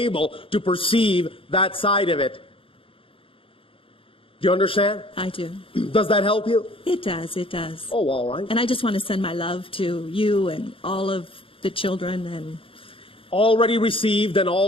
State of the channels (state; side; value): late; right; 0.26 ms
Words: to perceive that side of it. Do you understand? I do. Does that help you? It does. It does. Oh, all right. And I just want to send my love to you and all of the children. And Already received and